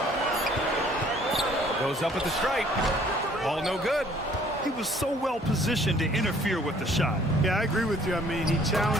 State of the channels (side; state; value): both; normal; correlation 0.58